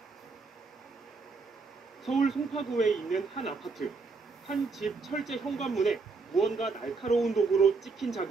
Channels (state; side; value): quieter; left; 4.3 dB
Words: 서울 송파구에 있는 한 아파트. 한 집 철제 현관문에 무언가 날카로운 도구로 찍힌